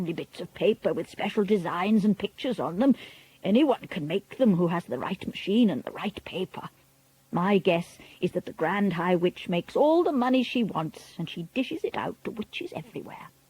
bits of paper with special designs and pictures on them. Anyone can make them who has the right machine and the right paper. My guess is that the Grand High Witch makes all the money she wants, and she dishes it out to witches everywhere.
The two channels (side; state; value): both; identical; correlation 1.00